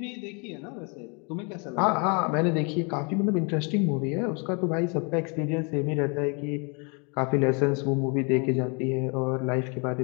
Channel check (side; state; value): right; quieter; 34.0 dB